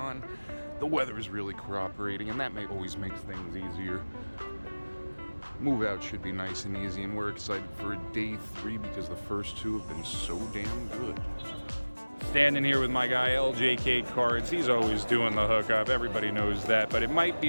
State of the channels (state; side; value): inverted; both; correlation -1.00